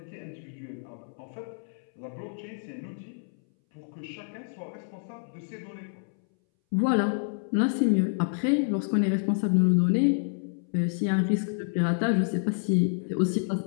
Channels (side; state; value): right; silent; 59 dB below the other